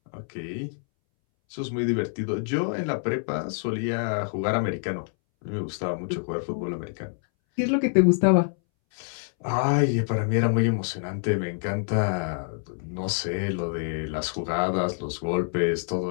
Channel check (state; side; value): silent; right; 61 dB below the other